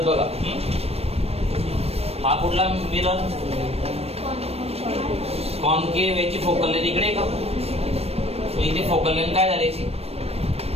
बघा हा कुठला मिरर कॉनकेव्ह याची फोकल लेंथ इकडे का इथे फोकल लेंथ काय झाली याची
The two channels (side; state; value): left; late; 0.29 ms